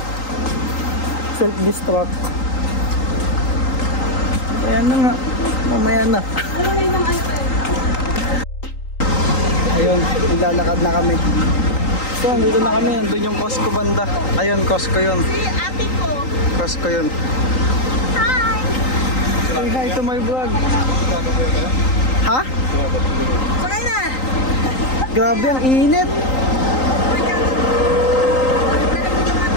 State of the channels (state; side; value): late; right; 3.8 ms